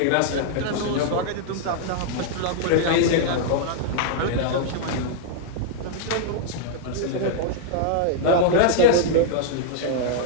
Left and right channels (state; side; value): different; both; correlation -0.01